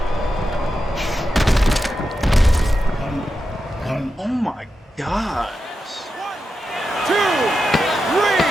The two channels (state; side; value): normal; both; correlation 0.89